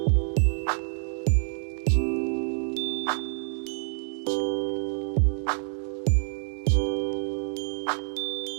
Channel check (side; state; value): left; silent; 60 dB below the other